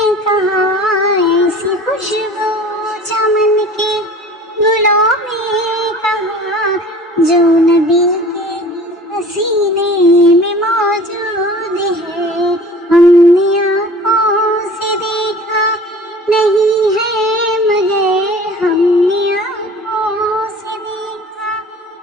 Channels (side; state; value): both; normal; correlation 0.44